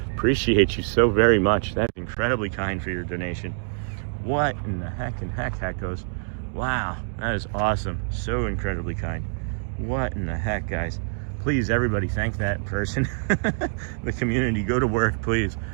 Appreciate you so very much. That's incredibly kind for your donation. What in the heck goes? Wow, that is awesome. So incredibly kind. What in the heck, guys? Please, everybody, thank that person. The community, go to work, please.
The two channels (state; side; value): silent; left; digital silence